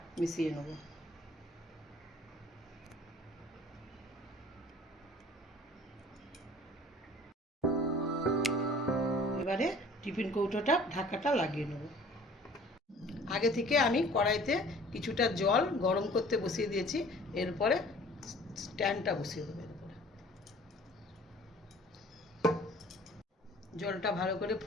মিশিয়ে নেব। এবারে টিফিন কৌটোটা ঢাকাটা লাগিয়ে নেব। আগে থেকে আমি কড়াইতে কিছুটা জল গরম করতে বসিয়ে দিয়েছি। এরপরে স্ট্যান্ডটা বসিয়ে দেবো। এরপরে জলটা ভালো করে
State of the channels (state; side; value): normal; both; correlation 0.50